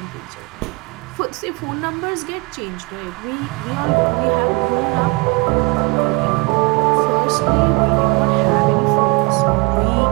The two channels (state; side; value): quieter; left; 28.4 dB